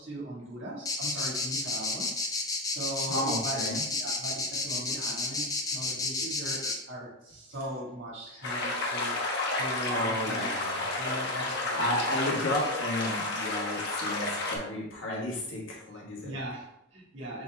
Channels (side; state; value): both; normal; correlation 0.10